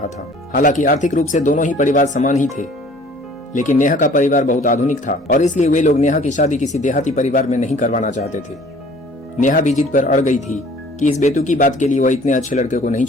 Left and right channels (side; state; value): both; normal; correlation 0.52